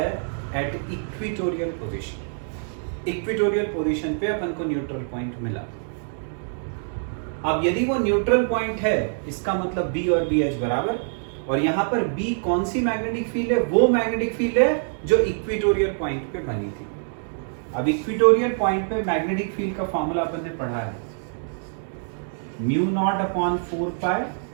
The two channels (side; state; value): left; silent; digital silence